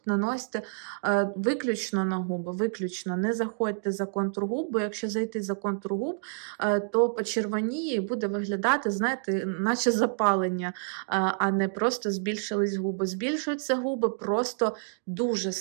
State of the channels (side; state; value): left; silent; digital silence